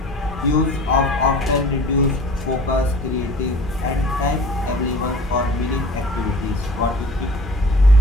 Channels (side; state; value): both; normal; correlation 0.44